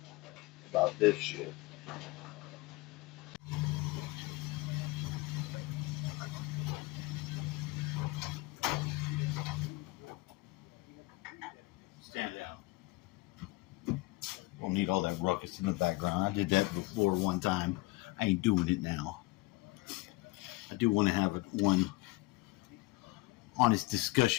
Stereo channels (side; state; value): right; quieter; 22.4 dB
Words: about this shit. Stand down. Don't need all that ruckus in the background. I did that before one time. I ain't doing it now. I do want to have one honest